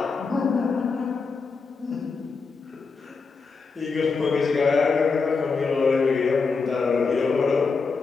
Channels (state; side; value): quieter; right; 4.7 dB